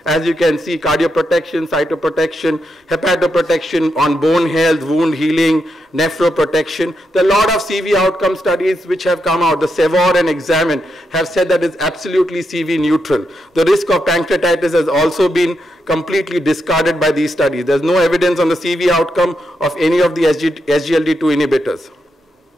as you can see, cardioprotection, cytoprotection, hepatoprotection on bone health, wound healing, nephroprotection. There are a lot of CV outcome studies which have come out. The SEVOR and Examine have said that it's absolutely CV neutral. The risk of pancreatitis has also been completely discarded by these studies. There's no evidence on the CV outcome of any of the SGLT2 inhibitors.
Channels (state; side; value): normal; both; correlation 0.83